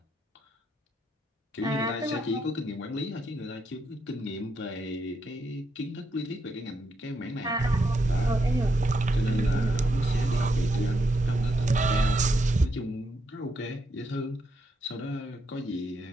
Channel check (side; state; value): both; normal; correlation 0.79